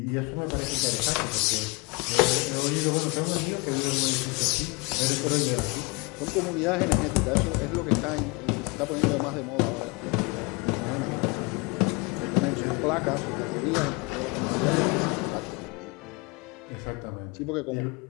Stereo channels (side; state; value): right; quieter; 28.8 dB